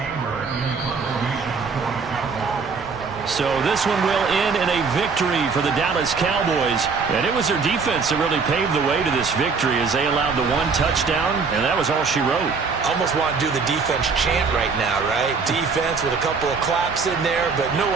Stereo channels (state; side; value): quieter; left; 5.0 dB